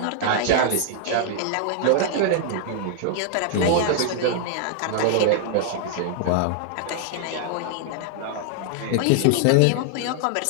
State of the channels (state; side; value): different; both; correlation -0.01